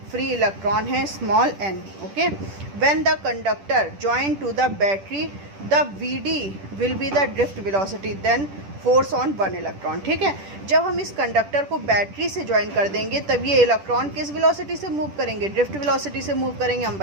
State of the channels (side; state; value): left; late; 10 ms